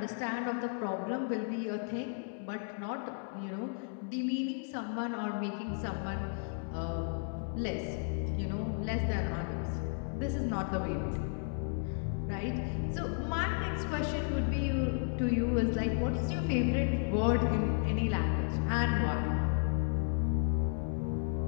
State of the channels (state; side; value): silent; right; 55 dB below the other